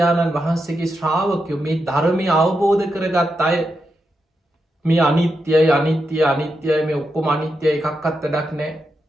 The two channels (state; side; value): normal; both; correlation 0.86